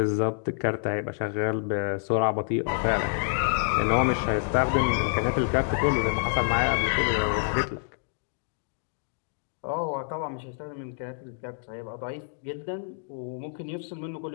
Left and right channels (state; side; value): silent; right; digital silence